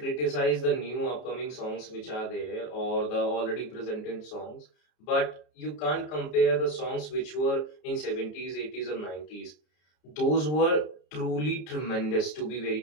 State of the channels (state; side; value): late; right; 33 ms